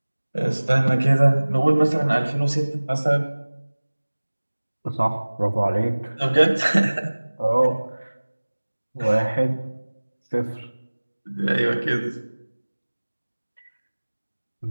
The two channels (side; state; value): both; inverted; correlation -1.00